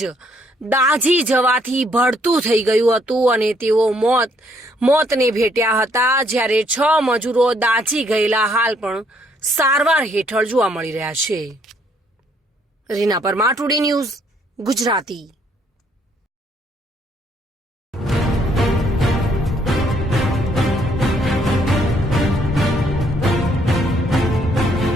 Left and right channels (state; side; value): normal; both; correlation 0.68